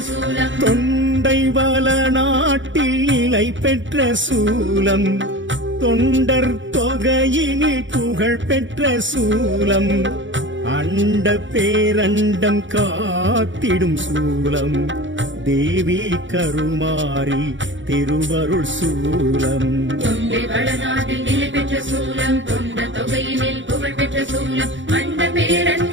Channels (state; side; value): late; left; 0.55 ms